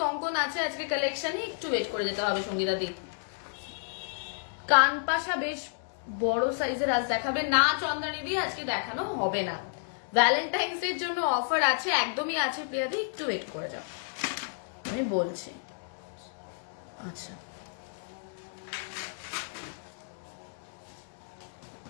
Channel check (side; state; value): right; silent; digital silence